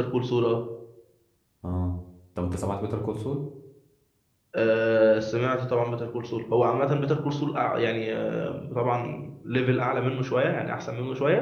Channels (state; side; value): identical; both; correlation 1.00